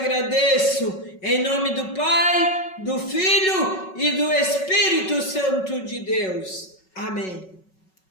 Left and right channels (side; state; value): right; late; 5.4 ms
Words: em nome do Pai, do Filho e do Espírito Santo de Deus. Amém.